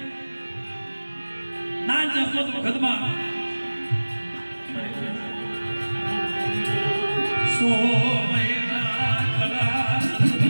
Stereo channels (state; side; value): inverted; both; correlation -1.00